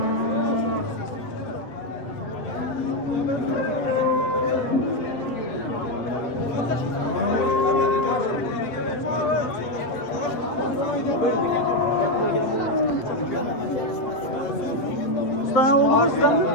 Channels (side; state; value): right; late; 7.9 ms